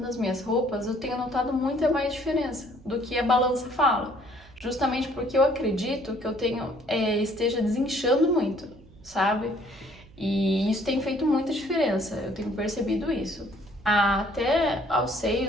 as minhas roupas, eu tenho notado muita mais diferença do que a balança fala. Justamente porque eu acredito que eu esteja desinchando muito, sabe? E isso tem feito muita diferença, eu tenho percebido isso. Até aos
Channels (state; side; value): noise; right; hum, 24 dB below the sound